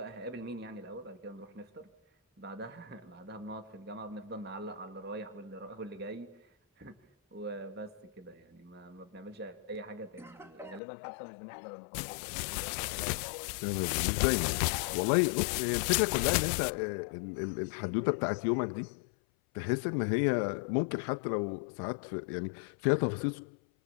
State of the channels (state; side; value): drops out; right; at 10.8 s